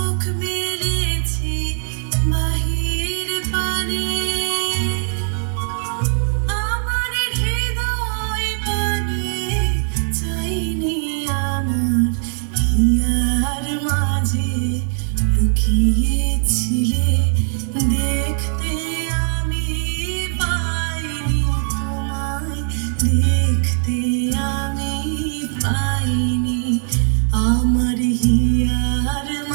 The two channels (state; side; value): silent; left; digital silence